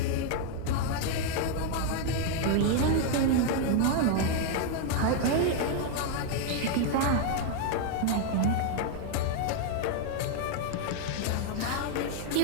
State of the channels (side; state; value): both; different; correlation 0.00